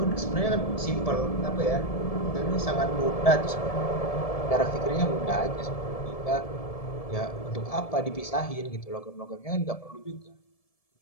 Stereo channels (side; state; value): right; late; 1.7 ms